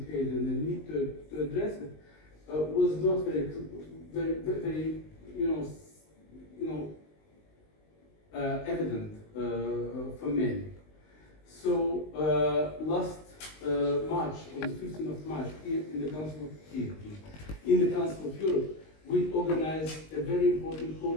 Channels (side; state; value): right; late; 19 ms